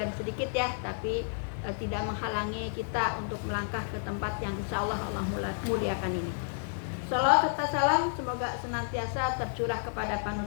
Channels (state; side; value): silent; right; 57 dB below the other